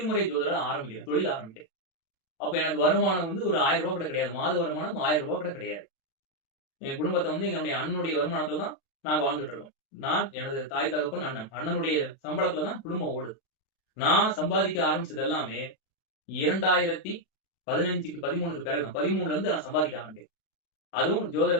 ஜோதிடரா ஆரம்பிக்கிறேன். தொழில் ஆரம்பிக்கிறேன். அப்ப எனக்கு வருமானம் வந்து ஒரு ரூ. 1000 கூட கிடையாது. மாத வருமானம் ரூ. 1000 கூட கிடையாது. என் குடும்பத்த வந்து என்னுடைய அண்ணனுடைய வருமானத்துல தான் நாங்க வாழ்ந்துட்டு இருக்கோம். நான், எனது தாய், தகப்பன், அண்ணன். அண்ணனுடைய சம்பளத்துல தான் குடும்பம் ஓடுது. நான் சம்பாதிக்க ஆரம்பிச்சது எல்லாமே 2015க்கு 13க்கு பிறகு தான். 13ல இருந்து நான் சம்பாதிக்க ஆரம்பிக்கிறேன். அதுவும்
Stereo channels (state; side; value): late; right; 36 ms